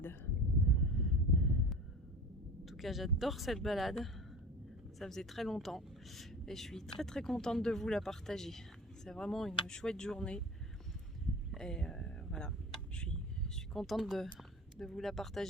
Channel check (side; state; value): both; normal; correlation 0.35